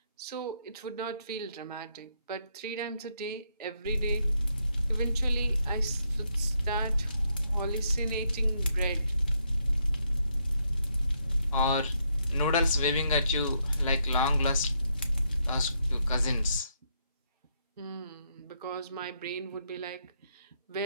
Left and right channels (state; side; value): inverted; both; correlation -0.76